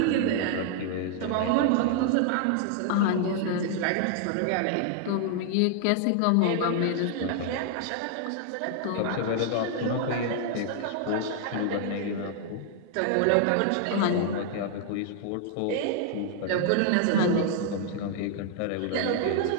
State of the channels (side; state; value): both; different; correlation -0.01